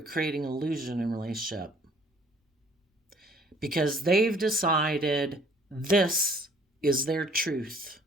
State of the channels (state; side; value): normal; both; correlation 0.58